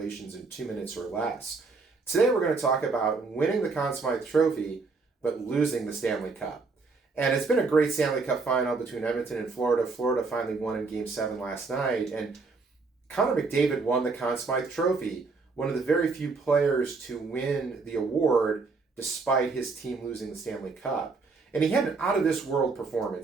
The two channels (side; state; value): left; quieter; 4.2 dB